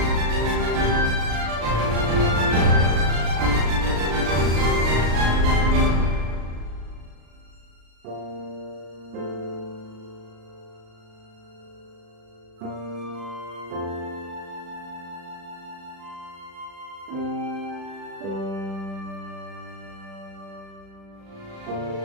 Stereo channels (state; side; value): late; left; 36 ms